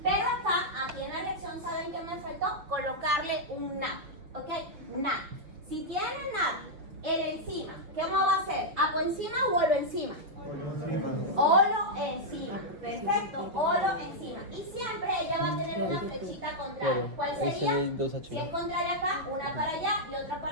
Pero acá, aquí en la reacción, ¿saben qué me faltó? Colocarle un NAD, ¿ok? NAD. Si tienen NAD, el enzima, ¿qué va a hacer? ¿Apoenzima o oloenzima? Oloenzima. Perfecto, oloenzima. Y siempre ella va a tener una flechita contraria. ¿Cuál sería? Si es contraria acá, una para allá y otra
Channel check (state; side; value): late; left; 6.3 ms